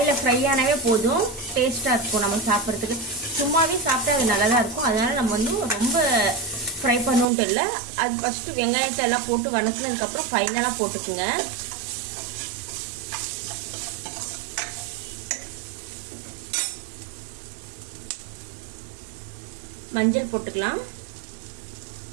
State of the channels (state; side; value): drops out; left; at 7.2 s